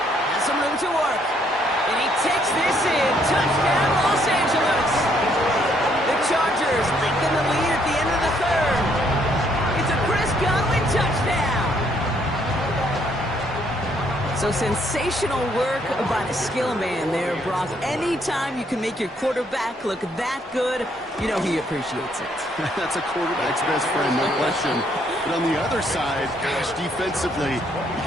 Has some room to work. And he takes this in. Touchdown, Los Angeles. The Chargers lengthen the lead at the end of the 3rd. It's a Chris Godwin touchdown. So sensational work by the skill man there, Brock. Anytime you can make your quarterback look that good, you know he appreciates it. That's a quarterback's best friend, no question. But on the other side, gosh, defensively, you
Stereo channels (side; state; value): both; normal; correlation 0.69